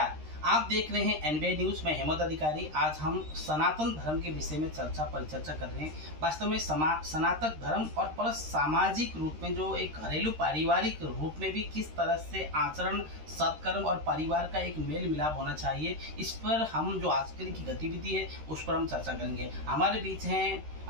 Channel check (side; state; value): left; late; 13 ms